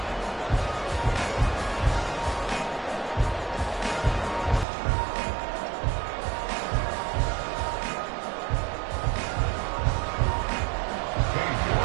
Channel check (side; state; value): left; drops out; at 4.7 s